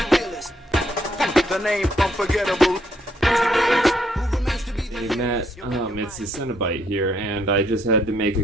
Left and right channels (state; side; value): normal; both; correlation 0.71